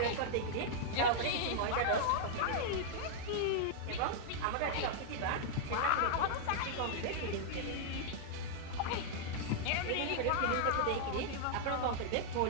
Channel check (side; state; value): both; different; correlation -0.01